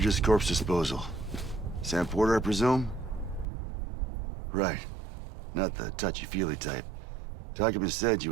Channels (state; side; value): drops out; left; at 3.5 s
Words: Corpse Disposal. Sam Porter, I presume? Right. Not the touchy-feely type. Document said you